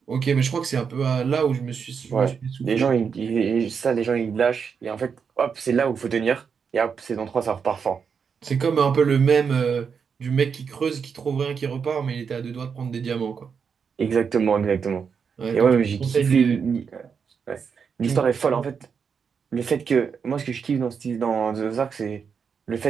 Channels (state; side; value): quieter; left; 6.3 dB